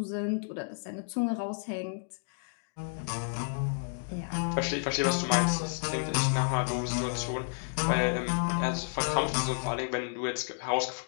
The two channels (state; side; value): silent; right; digital silence